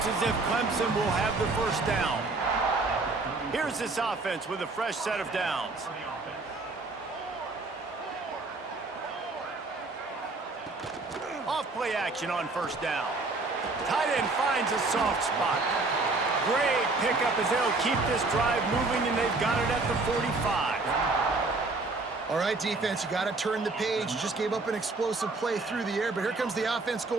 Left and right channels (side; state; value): left; quieter; 3.5 dB